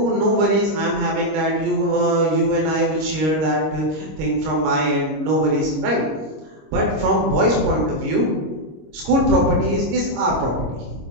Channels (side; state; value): left; late; 26 ms